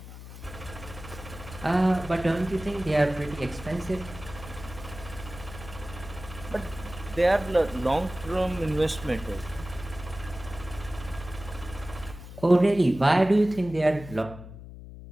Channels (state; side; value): noise; left; hum, 14 dB below the sound